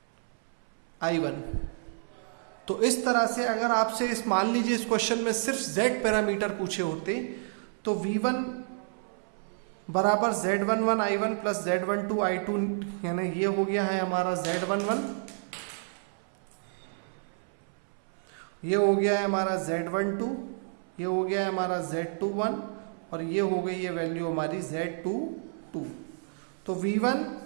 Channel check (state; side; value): silent; left; 58 dB below the other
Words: I1। तो इस तरह से अगर आपसे इस मान लीजिए इस क्वेश्चन में सिर्फ Z पैरामीटर पूछे होते तो V1 बराबर Z11 I1 plus Z12 I2, यानी ये हो गया है हमारा Z11। ये हो गया है हमारा Z12, ये हो गया है हमारा Z21 और ये हो गई है वैल्यू हमारी Z22। तो V1,